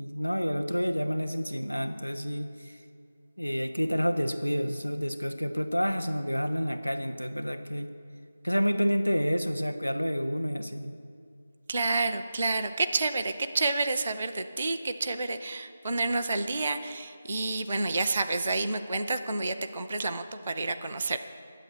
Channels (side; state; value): both; inverted; correlation -0.93